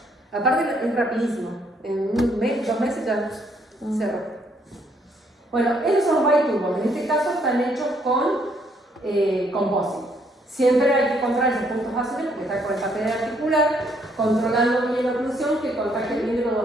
Aparte, es rapidísimo. En 2 meses ya cerró. Bueno, esos son los biturbos. En este caso están hechos con composite. Siempre hay que controlar esos puntos azules porque está con el papel articular, controlando bien la oclusión que contacte bien de los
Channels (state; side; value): normal; both; correlation 0.69